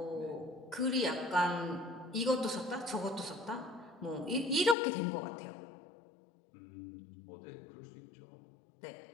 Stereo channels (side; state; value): right; drops out; at 4.8 s